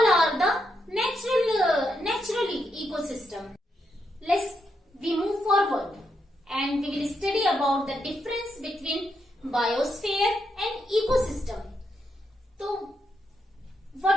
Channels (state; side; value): normal; both; correlation 0.81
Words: are the natural ecosystem. We move forward and we will study about the difference between biosphere and ecosystem. So,